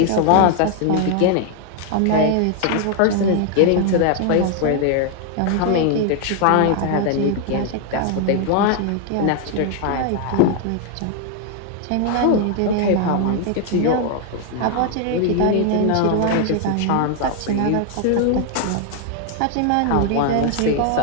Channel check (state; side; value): different; both; correlation 0.00